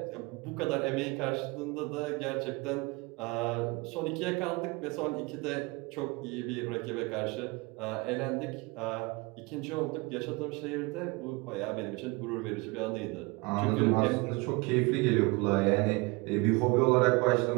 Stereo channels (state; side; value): quieter; left; 26.3 dB